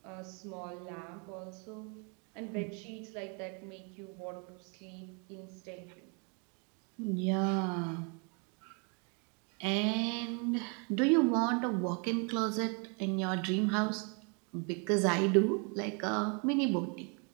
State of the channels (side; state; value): left; quieter; 35.8 dB